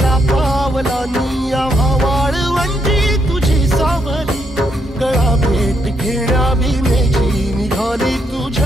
पावलानी आव्हा वाळवंटी तुझी सावली गळा भेट घेण्या भीमेची निघाली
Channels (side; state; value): both; normal; correlation 0.76